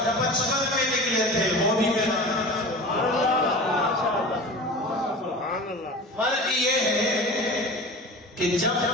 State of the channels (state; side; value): normal; both; correlation 0.35